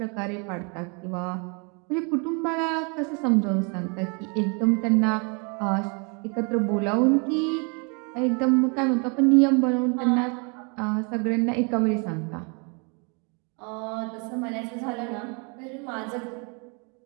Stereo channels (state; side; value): quieter; left; 34.3 dB